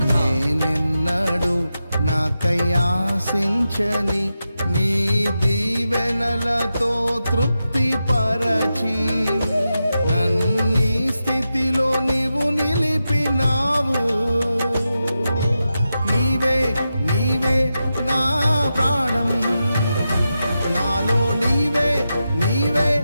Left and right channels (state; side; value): inverted; both; correlation -0.89